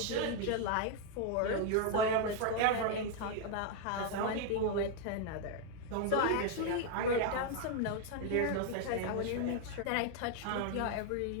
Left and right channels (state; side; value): different; both; correlation 0.00